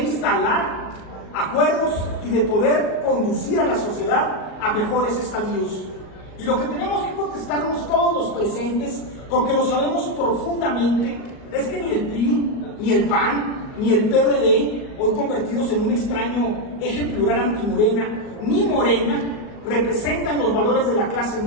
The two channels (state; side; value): late; right; 38 ms